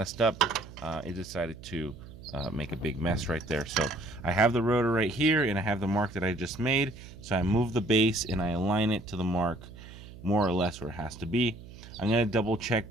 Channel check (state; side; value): noise; right; hum, 16 dB below the sound